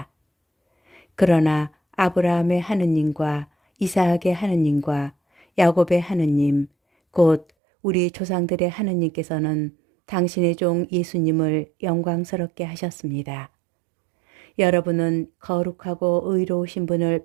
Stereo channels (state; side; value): drops out; left; at 7.5 s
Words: 그러나 아브라함의 하느님과 이삭의 하느님과 야곱의 하느님, 곧 우리 조상들의 하느님께서는 당신의 종 예수님을 영광스럽게 하셨습니다. 여러분은 거룩하고 의로우신 분을